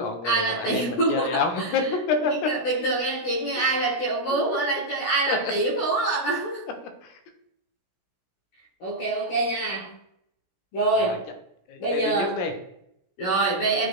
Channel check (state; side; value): late; right; 16 ms